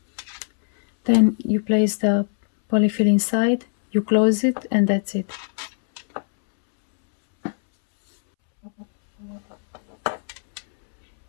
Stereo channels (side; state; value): right; silent; 65 dB below the other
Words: then you place the polyfill inside, you close it, and that's it.